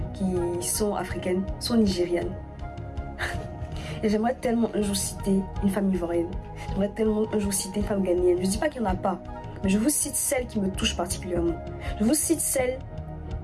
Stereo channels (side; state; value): both; identical; correlation 1.00